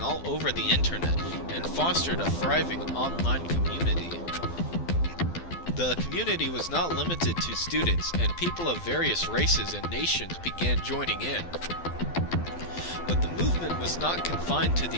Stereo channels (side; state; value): right; late; 12 ms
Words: all over the internet and fostered a thriving online community. The community was not limited to students, and people of various races and nations began joining in. But the movement was not confined to the